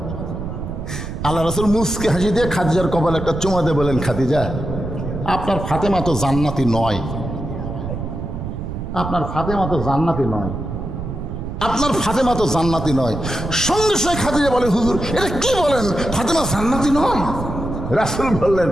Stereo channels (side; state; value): right; noise; rumble, 6 dB below the sound